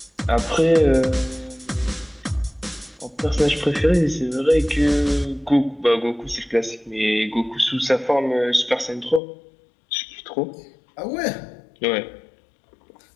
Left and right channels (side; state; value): right; drops out; at 9.2 s